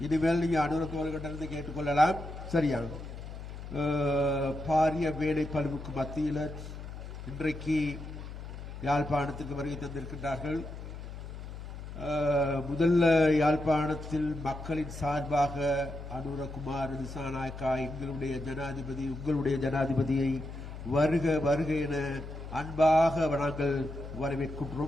இனிமேல் நீங்க அனுரத்தோர்களிடமிருந்து கேட்டுக்கொள்ளலாம். சரியா? பாரிய வேலை பழுவுக்கு மத்தியில் இன்றைக்கு யாழ்ப்பாணத்துக்கு வருகை தந்திருக்கின்றார்கள். முதல்ல யாழ்ப்பாணத்தில் மக்களின் சார்பாக அனுரகுமார் திசாநாயக்கா எங்களுடைய ஜனாதிபதி, உங்களுடைய ஜனாதிபதியை வருக வருக என அன்பாக நாங்கள்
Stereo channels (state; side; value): noise; left; hum, 10 dB below the sound